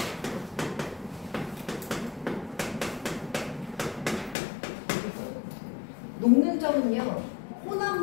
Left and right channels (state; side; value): drops out; right; at 4.4 s